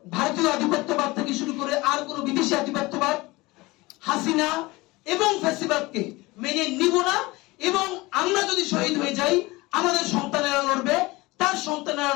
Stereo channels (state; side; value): quieter; right; 21.7 dB